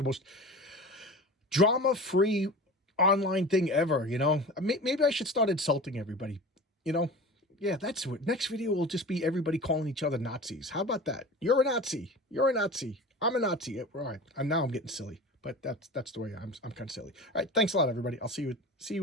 most drama-free online thing ever. You know, maybe I should start insulting everybody. You know. Yeah, that's what. Next video will just be everybody calling each other Nazis. How about that? You're a Nazi. You're a Nazi. I'm a Nazi. All right. And now I'm getting silly. But that's the way I'm kind of silly. All right. Thanks a lot, everybody. I'll see you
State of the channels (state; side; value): normal; both; correlation 0.34